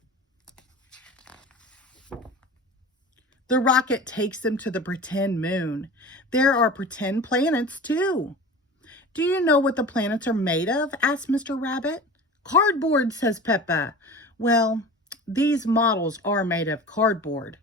The rocket takes them to the pretend moon. There are pretend planets, too. Do you know what the planets are made of? Asks Mr. Rabbit. Cardboard, says Peppa. Well, these models are made of cardboard,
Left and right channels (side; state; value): both; normal; correlation 0.35